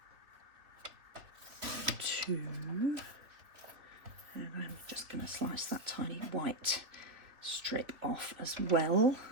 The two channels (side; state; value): left; late; 3.0 ms